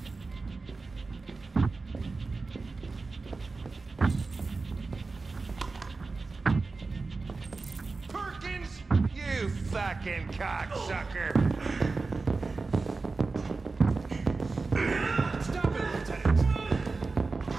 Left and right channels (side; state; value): left; quieter; 3.9 dB